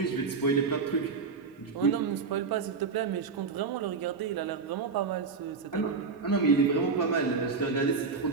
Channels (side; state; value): left; quieter; 4.9 dB